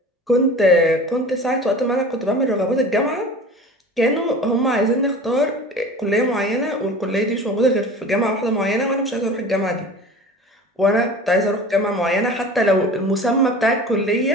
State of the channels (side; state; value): both; normal; correlation 0.39